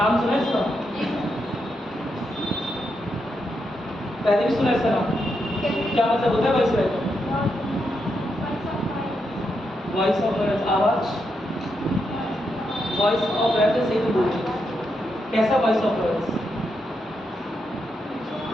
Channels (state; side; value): normal; both; correlation 0.83